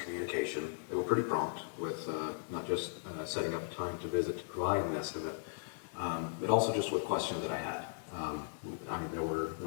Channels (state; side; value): silent; right; digital silence